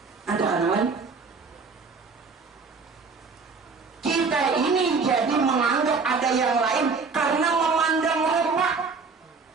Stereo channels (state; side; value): quieter; left; 4.7 dB